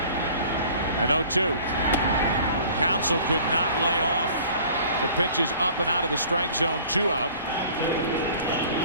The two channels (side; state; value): both; inverted; correlation -0.49